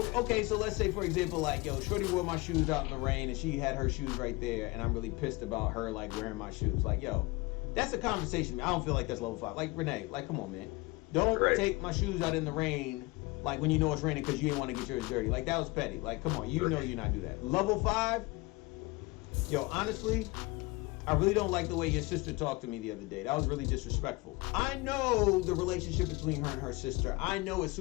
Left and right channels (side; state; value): right; quieter; 23.6 dB